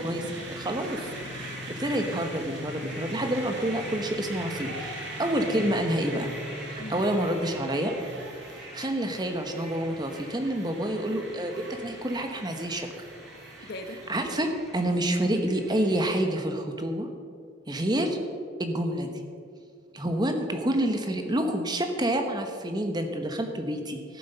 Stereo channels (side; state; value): both; normal; correlation 0.63